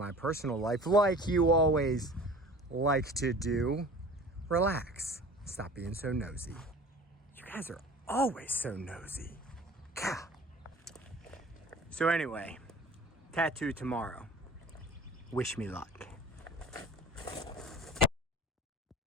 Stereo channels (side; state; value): both; normal; correlation 0.43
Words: personal life, like you always like to do, relax. Stop being so nosy. You guys are always so nosy. Gah. So anyway, tattoo tomorrow. Wish me luck.